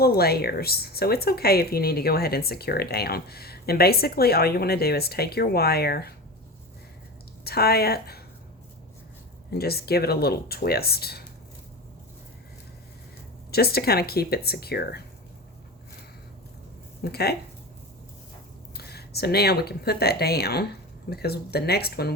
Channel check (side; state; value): both; normal; correlation 0.28